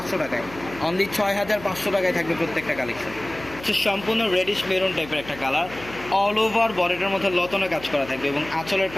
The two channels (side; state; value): left; noise; hum, 17 dB below the sound